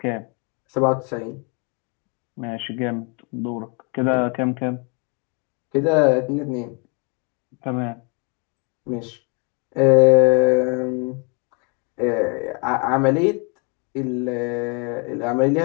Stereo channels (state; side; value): quieter; right; 34.8 dB